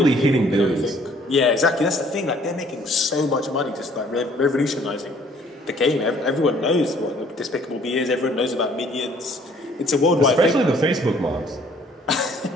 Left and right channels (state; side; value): normal; both; correlation 0.59